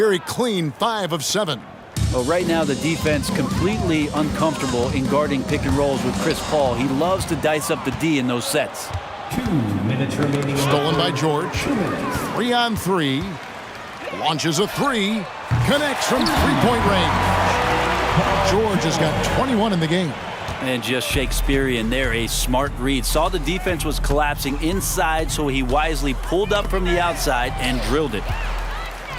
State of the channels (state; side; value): identical; both; correlation 1.00